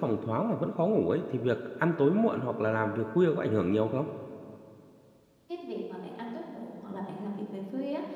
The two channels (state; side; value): identical; both; correlation 1.00